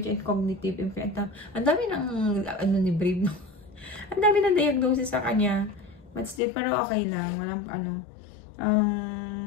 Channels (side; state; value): right; drops out; at 6.4 s